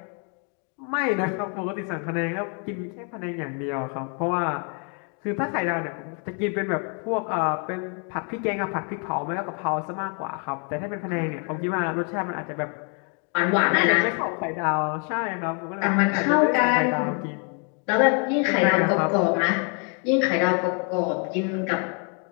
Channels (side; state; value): right; quieter; 39.0 dB